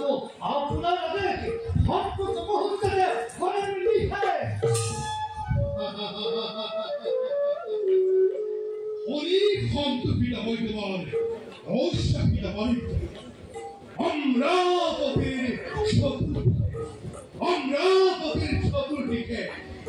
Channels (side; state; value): both; identical; correlation 1.00